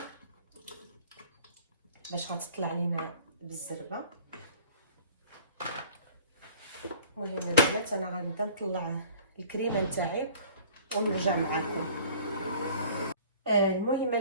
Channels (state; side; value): inverted; both; correlation -0.49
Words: باش غتطلع لينا بالزربه. المهم البنات انا غنبدا نطلع الكريمه نتاعي ونرجع معكم. المهم